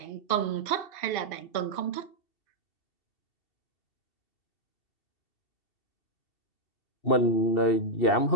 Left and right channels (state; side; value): late; right; 2.7 ms